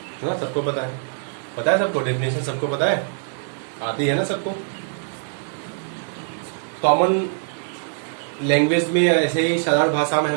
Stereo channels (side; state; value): left; silent; digital silence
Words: ना, सबको पता है सबको, डेफिनेशन सबको पता है, आती है ना सबको। कॉमन लैंग्वेज में ऐसे ही सरल भाषा में